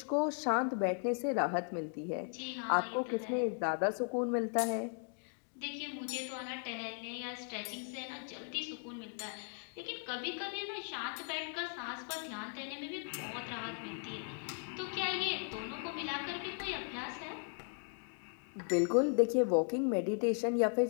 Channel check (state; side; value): silent; right; 53 dB below the other